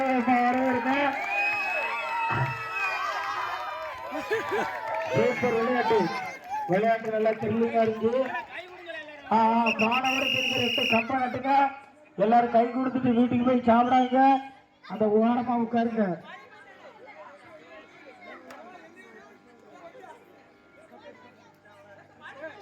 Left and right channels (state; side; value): identical; both; correlation 1.00